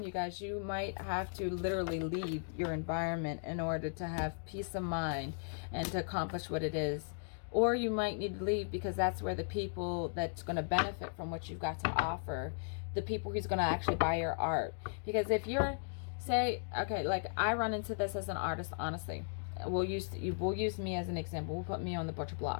you guys, you might have to literally leave your environment in order to have peace of mind and to accomplish what it is. Or you might need to leave because that's where the people that's going to benefit from what you've got to offer, the people who's going to actually buy your art. Because if you're, say, okay, like I run into this as an artist, honestly. We'll use me as an example. We'll put me on the butcher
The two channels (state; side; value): silent; right; digital silence